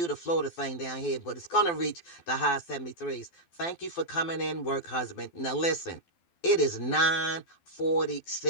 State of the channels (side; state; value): right; late; 12 ms